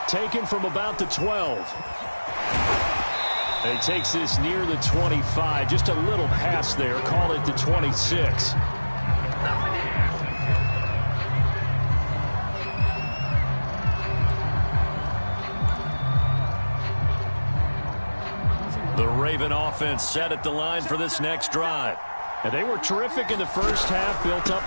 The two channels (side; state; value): both; inverted; correlation -1.00